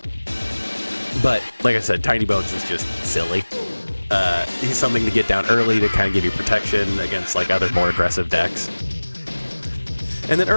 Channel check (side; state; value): both; inverted; correlation -1.00